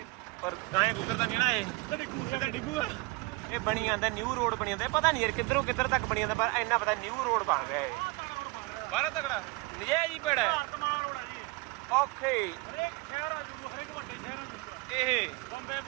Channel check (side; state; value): left; quieter; 24.3 dB